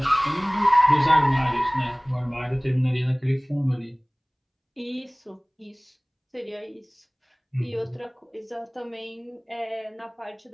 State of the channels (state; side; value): identical; both; correlation 1.00